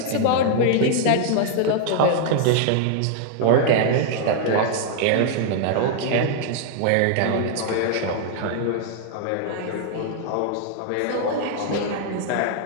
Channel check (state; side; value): different; both; correlation 0.00